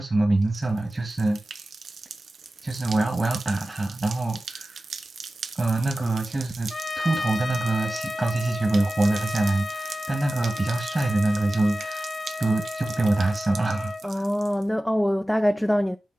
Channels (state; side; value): normal; both; correlation 0.96